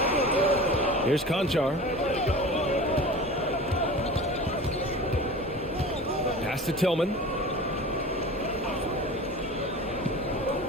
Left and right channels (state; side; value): normal; both; correlation 0.36